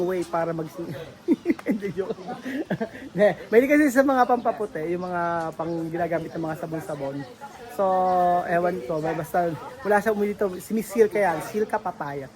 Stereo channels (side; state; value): both; identical; correlation 1.00